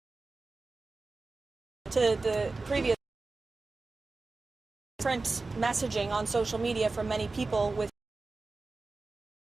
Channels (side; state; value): left; quieter; 3.6 dB